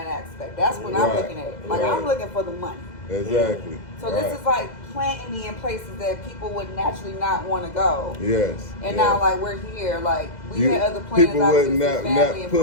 aspect. That's what I'm Right, looking at. Like right. I'm looking for the money. Exactly. So right. this is like planting me in places that people would naturally not want to go. Yes. And yes. now like we're here, like we had other plans. People would obviously, family and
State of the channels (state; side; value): late; right; 2.0 ms